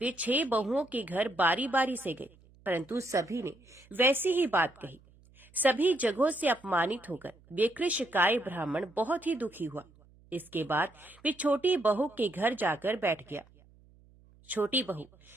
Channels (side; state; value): right; noise; hum, 28 dB below the sound